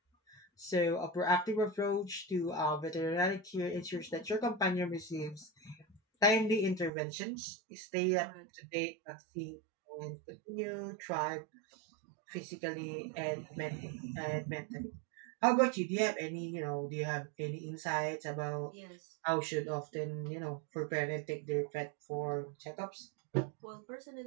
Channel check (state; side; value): drops out; left; at 6.9 s